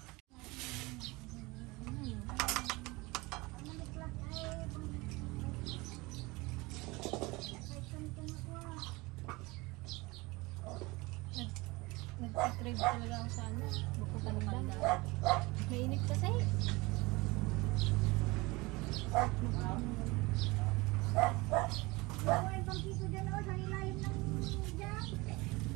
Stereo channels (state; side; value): quieter; left; 23.4 dB